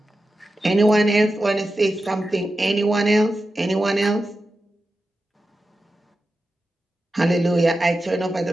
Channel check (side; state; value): both; normal; correlation 0.91